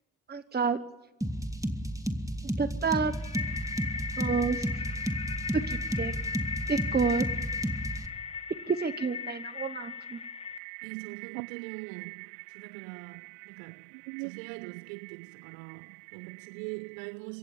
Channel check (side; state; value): left; drops out; at 10.6 s